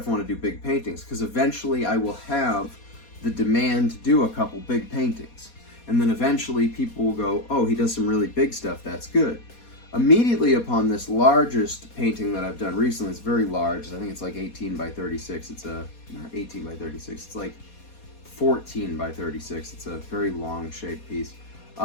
I want to do big paintings? Because eventually I will have the demand to do a couple big paintings. And then eventually people will go, oh, he does some really big stuff, that's good. Immediately upon this largest painting that I've done recently, it's very large, I think it's like 18 by 36, not 18 by 36, it's like 14 by 36, it's a very long shaped piece.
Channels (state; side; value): late; right; 4.2 ms